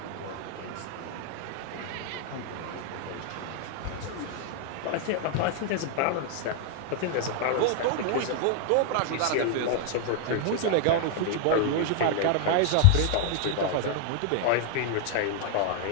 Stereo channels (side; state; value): both; different; correlation 0.00